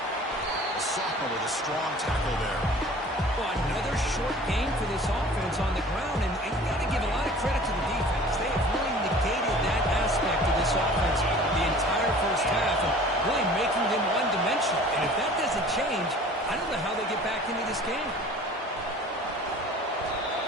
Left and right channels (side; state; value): both; normal; correlation 0.46